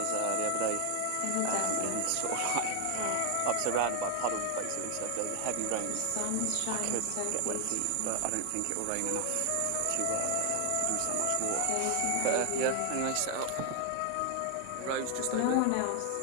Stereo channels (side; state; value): both; different; correlation 0.00